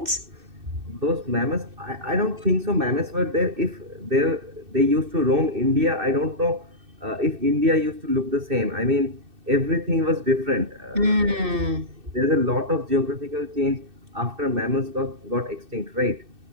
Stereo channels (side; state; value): left; late; 2.6 ms